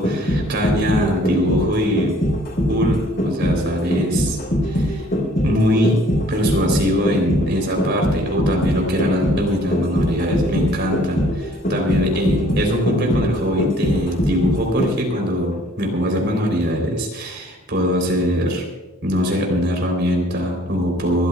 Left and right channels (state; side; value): normal; both; correlation 0.58